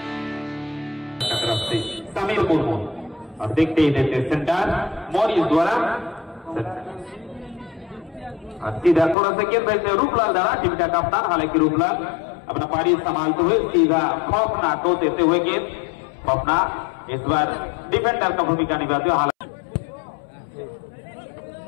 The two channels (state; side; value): drops out; right; at 9.2 s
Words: समीर मुर्मू और देखते ही देते सेंटर मॉरिस द्वारा सीधा थोड़ा सा गेंद वैसे रूपलाल द्वारा टीम का कप्तान हालांकि रूपलाल अपना पारी संभालते हुए सीधा खौफनाक को देते हुए गेंद खौफनाक इस बार डिफेंडर का भूमिका निभाते हुए हालांकि